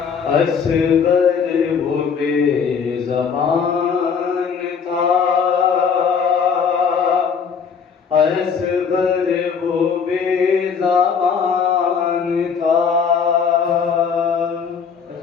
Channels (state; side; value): quieter; right; 6.3 dB